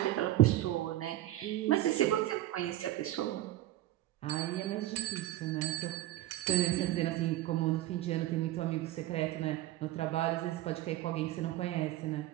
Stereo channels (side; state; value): left; quieter; 14.6 dB